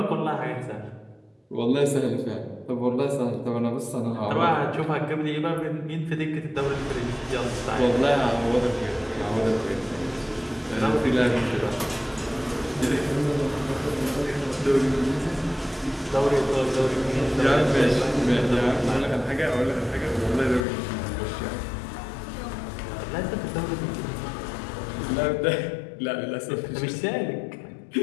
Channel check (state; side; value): drops out; right; at 20.7 s